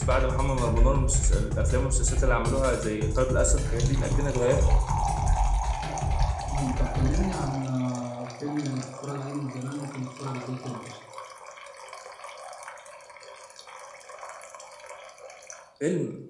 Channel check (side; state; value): both; identical; correlation 1.00